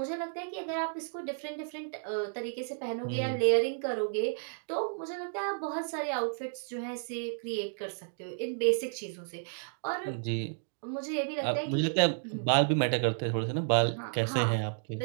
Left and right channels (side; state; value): left; silent; digital silence